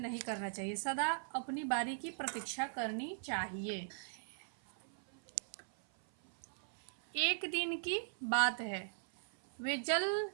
करना चाहिए, सदा अपनी बारी की प्रतीक्षा करनी चाहिए। एक दिन की बात है, वे जल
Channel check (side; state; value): left; silent; 51 dB below the other